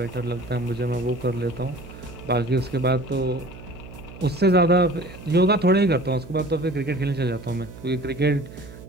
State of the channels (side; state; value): right; noise; hum, 16 dB below the sound